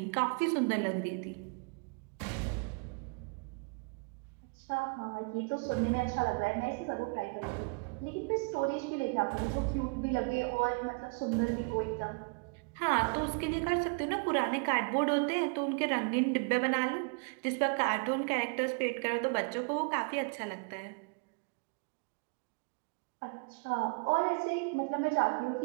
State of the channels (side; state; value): left; quieter; 33.8 dB